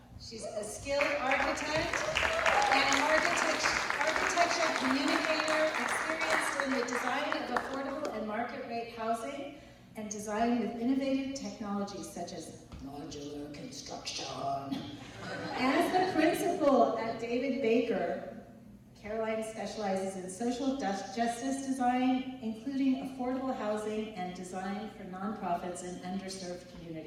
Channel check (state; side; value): identical; both; correlation 1.00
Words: She's a skilled architect and architecture communicator, experienced in the design of affordable and market rate housing, and design with innovative technologies such as modular construction. As the principal at David Baker, Caroline specializes in social justice design, including affordable housing and design for nonprofits in underserved